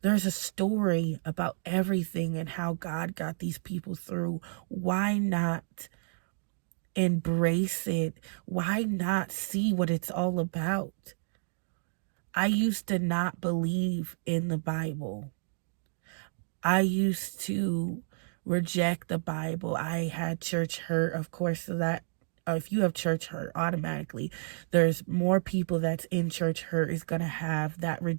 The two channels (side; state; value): left; silent; digital silence